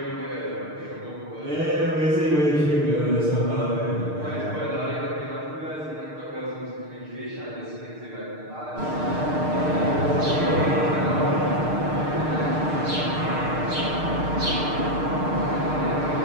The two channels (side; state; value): left; late; 6.6 ms